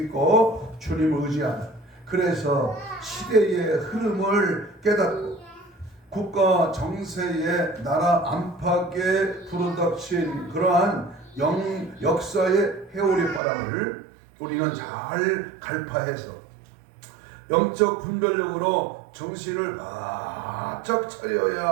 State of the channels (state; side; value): drops out; left; at 13.4 s